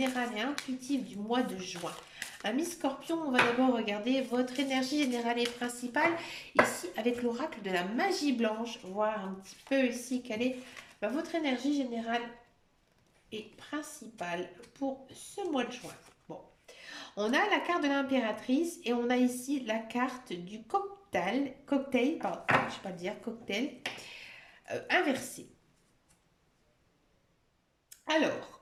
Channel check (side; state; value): both; identical; correlation 1.00